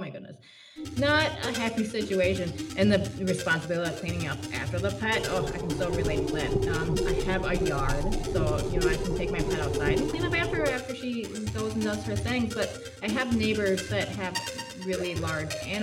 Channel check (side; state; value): both; identical; correlation 1.00